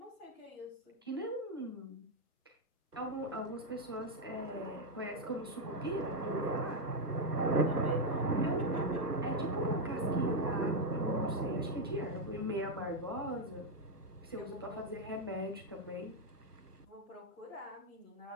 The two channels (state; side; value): normal; both; correlation 0.02